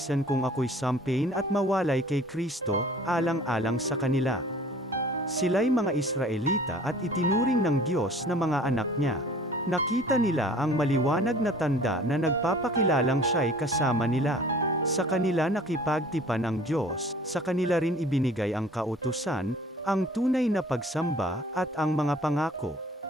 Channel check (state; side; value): normal; both; correlation 0.50